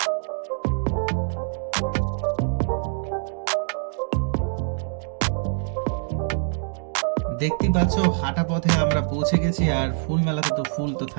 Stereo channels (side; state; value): left; silent; 62 dB below the other